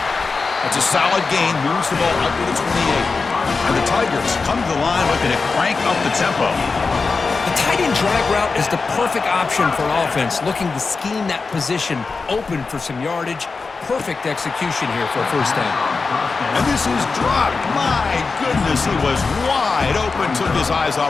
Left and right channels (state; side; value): quieter; right; 4.4 dB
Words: That's a solid gain. Moves the ball up to the 28. And the Tigers come to the line looking to crank up the tempo. The tight end drag route is the perfect option for an offense looking to scheme that position open for some yardage. Perfect execution here for a first down. And this is dropped. My goodness, he was wide open, took his eyes